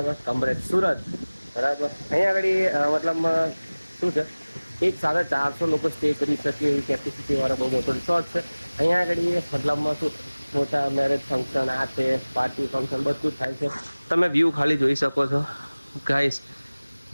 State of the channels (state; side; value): inverted; both; correlation -1.00